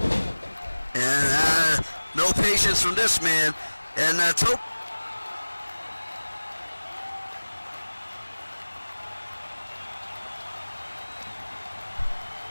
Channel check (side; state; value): both; inverted; correlation -1.00